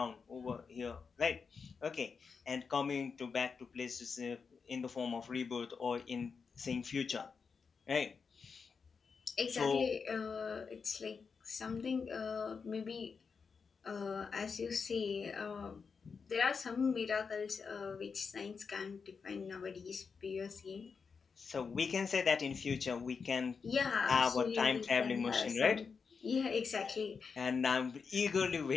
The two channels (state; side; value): quieter; right; 5.5 dB